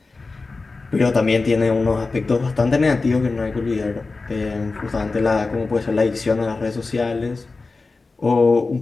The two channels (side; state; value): right; quieter; 3.8 dB